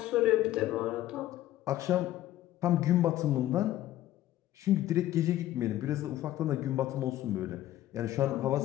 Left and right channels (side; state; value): right; quieter; 14.0 dB